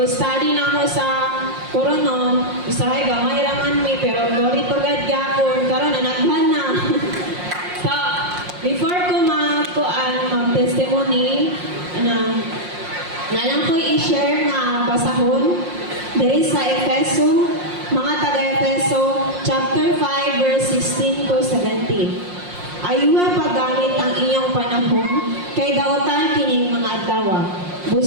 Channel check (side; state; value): left; late; 5.6 ms